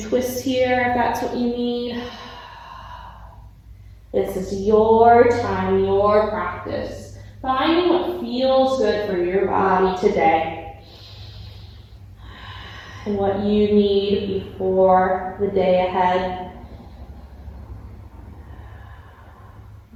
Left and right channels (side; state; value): both; identical; correlation 1.00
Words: twists here if that's what you need. This is your time, your practice. Finding what feels good for your body today. And what you need before the day ahead.